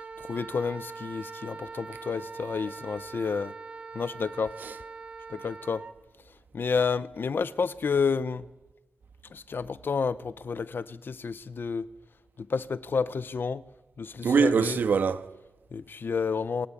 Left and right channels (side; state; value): both; normal; correlation 0.79